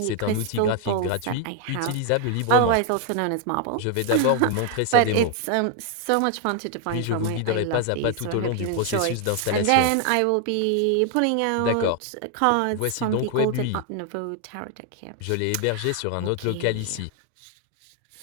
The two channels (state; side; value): different; both; correlation 0.00